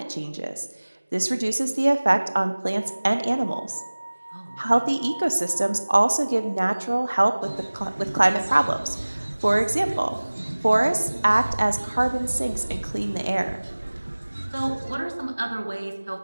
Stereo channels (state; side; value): inverted; both; correlation -1.00